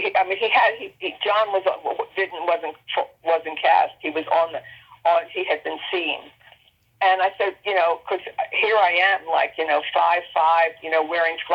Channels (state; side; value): identical; both; correlation 1.00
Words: John wasn't cast. He was he had been seen. And I said, because here I am, 5'5", wearing